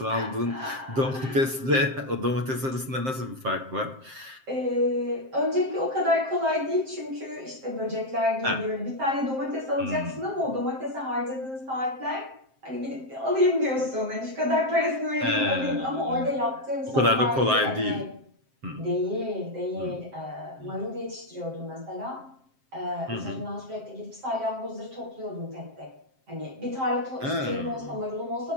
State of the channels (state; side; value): late; left; 7.6 ms